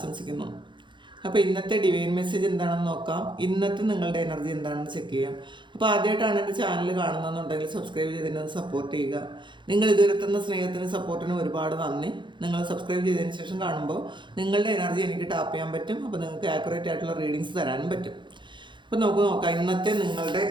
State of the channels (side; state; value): left; late; 0.23 ms